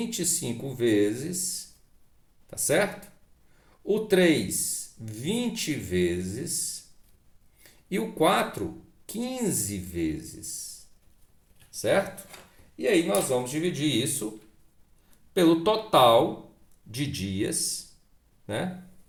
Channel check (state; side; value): identical; both; correlation 1.00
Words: vezes, tá certo? O 3, 20 vezes. E o 4, 15 vezes, certo? E aí nós vamos dividir isso pelo total de dias, né?